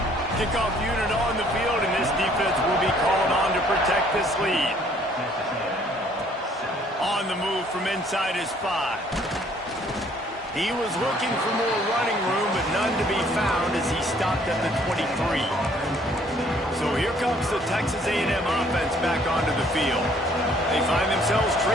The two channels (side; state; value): both; normal; correlation 0.61